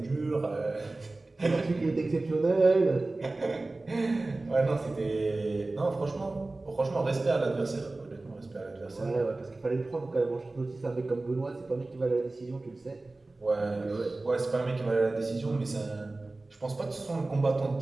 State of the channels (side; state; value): left; quieter; 3.1 dB